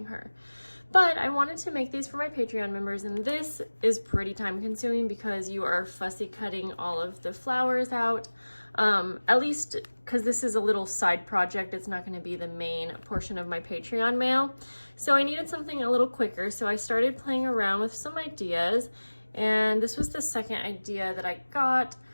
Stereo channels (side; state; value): both; inverted; correlation -1.00